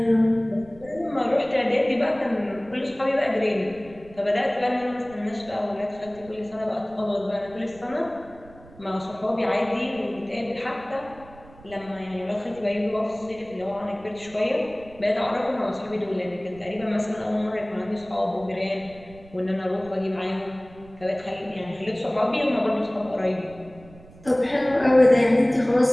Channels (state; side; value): noise; right; rumble, 22 dB below the sound